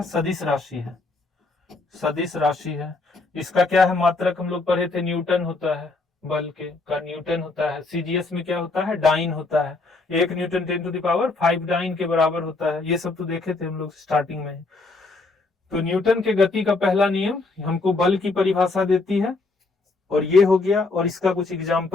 सदिश राशि है, सदिश राशि है। इसका क्या है, मात्रक हम लोग पढ़े थे, न्यूटन होता है, बल के का न्यूटन होता है। सीजीएस में क्या होता है, डाइन होता है, 1 न्यूटन 10⁵ डाइन के बराबर होता है। ये सब तो देखे थे हम लोग स्टार्टिंग में। तो न्यूटन के गति का पहला नियम हमको बल की परिभाषा देती है, और ये हो गया। और इसका कुछ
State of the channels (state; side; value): quieter; right; 3.5 dB